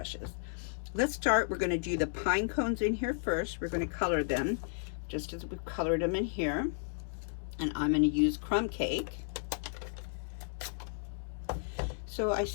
Let's start. We're going to do the pine cones in here first. We're going to color them just as we've colored them in here, and I'm going to use Crumb Cake. So I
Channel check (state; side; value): silent; right; digital silence